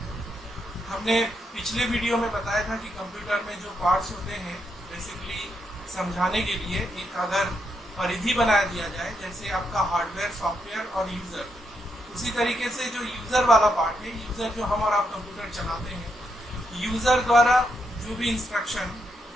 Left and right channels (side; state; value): both; normal; correlation 0.80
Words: हमने पिछले वीडियो में बताया था कि कंप्यूटर में जो पार्ट्स होते हैं बेसिकली समझाने के लिए एक अगर परिधि बना दिया जाए, जैसे आपका हार्डवेयर, सॉफ्टवेयर और यूज़र, उसी तरीके से जो यूज़र वाला पार्ट है, यूज़र जो हम और आप कंप्यूटर चलाते हैं, यूज़र द्वारा जो भी इंस्ट्रक्शन